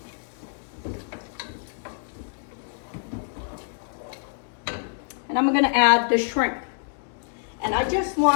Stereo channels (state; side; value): silent; right; 61 dB below the other